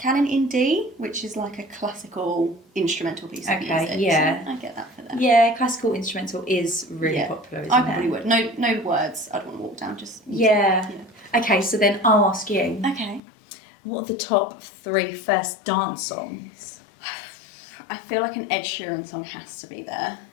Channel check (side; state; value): right; drops out; at 13.2 s